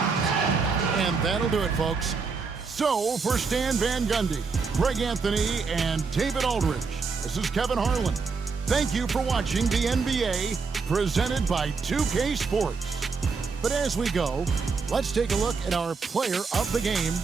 that'll do it, folks. So, for Stan Van Gundy, Greg Anthony, and David Aldridge, this is Kevin Harlan. Thank you for watching the NBA, presented by 2K Sports. But as we go, let's take a look at our player of the game,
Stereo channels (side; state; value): left; quieter; 4.9 dB